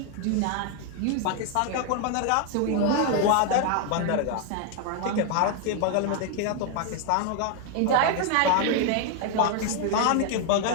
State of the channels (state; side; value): different; both; correlation 0.00